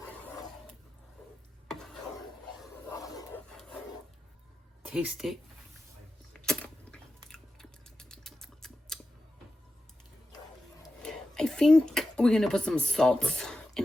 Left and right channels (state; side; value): normal; both; correlation 0.92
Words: Taste it. I think we're gonna put some salt